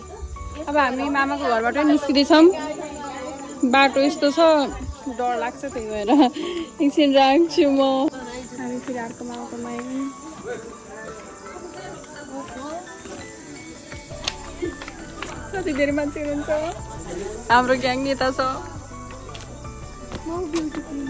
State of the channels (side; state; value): both; identical; correlation 1.00